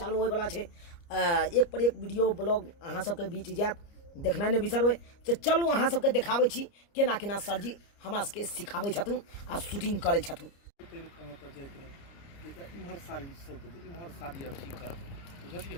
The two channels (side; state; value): right; late; 29 ms